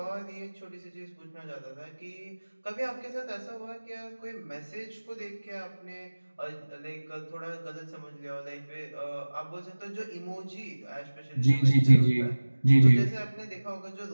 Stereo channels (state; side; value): inverted; both; correlation -1.00